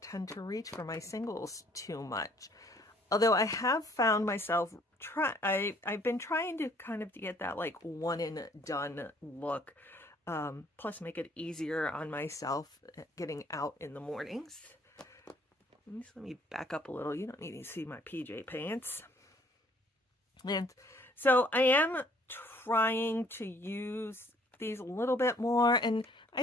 tend to reach for my singles too much. Although I have found myself I've been trying to kind of get that like one and done look, plus make it easier on myself getting out in the mornings. Let me back up a little. You don't need to see my PJ pants. And so I am trying to use these a little bit more. And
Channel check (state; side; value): normal; both; correlation 0.60